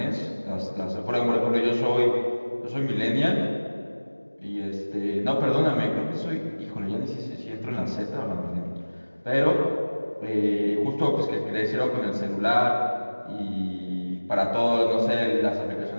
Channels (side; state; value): both; inverted; correlation -1.00